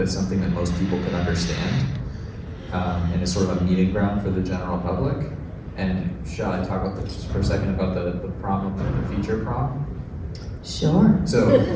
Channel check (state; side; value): identical; both; correlation 1.00